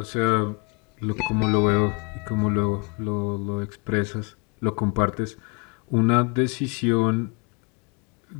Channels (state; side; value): quieter; right; 32.6 dB